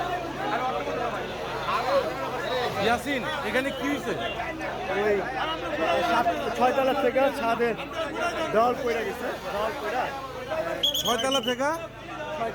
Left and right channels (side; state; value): both; identical; correlation 1.00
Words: ইয়াসিন, এখানে কি হয়েছে? ওই 6 তলা থেকে ছাদের দেওয়াল পড়ে গেছে। দেওয়াল পড়া 6 তলা থেকে